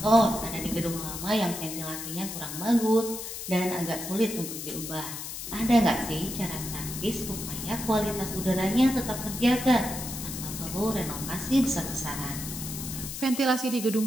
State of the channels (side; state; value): left; noise; hiss, 7 dB below the sound